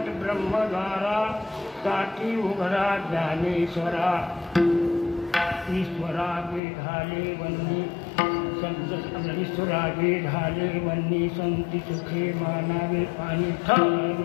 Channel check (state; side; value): drops out; right; at 6.6 s